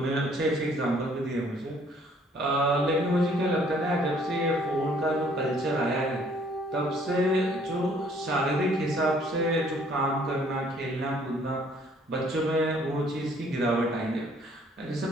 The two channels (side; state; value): both; normal; correlation 0.60